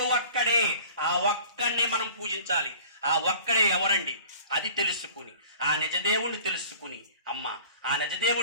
ఒక్కడే. ఆ ఒక్కడిని మనం పూజించాలి. ఆ ఒక్కడే ఎవరండి? అది తెలుసుకుని, ఆ నిజదేవుణ్ణి తెలుసుకుని, అమ్మ, ఆ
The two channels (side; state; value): both; inverted; correlation -0.47